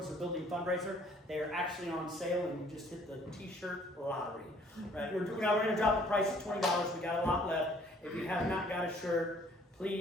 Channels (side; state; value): both; normal; correlation 0.59